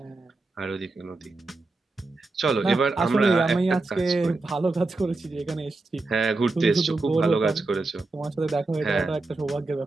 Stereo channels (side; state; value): left; quieter; 3.3 dB